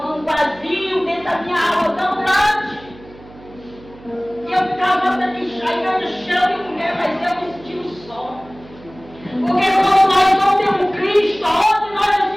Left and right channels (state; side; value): noise; right; hum, 21 dB below the sound